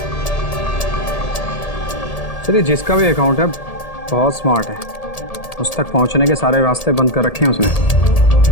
चलिए, जिसका भी अकाउंट है बहुत स्मार्ट है। उस तक पहुंचने के सारे रास्ते बंद कर रखे हैं उसने।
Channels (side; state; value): right; late; 1.8 ms